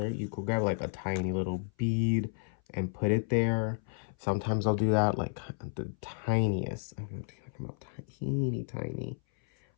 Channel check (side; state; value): right; silent; 56 dB below the other